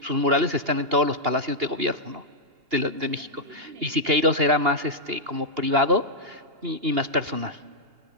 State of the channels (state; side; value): late; left; 2.8 ms